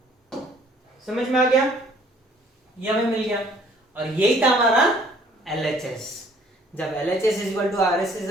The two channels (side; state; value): both; normal; correlation 0.59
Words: समझ में आ गया? ये हमें मिल गया, और यही था हमारा LHS। जब LHS is equal to